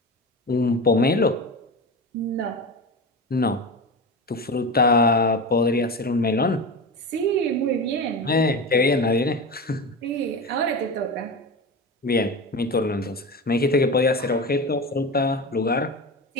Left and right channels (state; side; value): normal; both; correlation 0.25